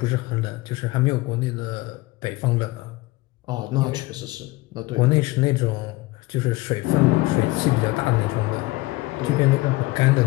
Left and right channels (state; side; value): quieter; right; 20.7 dB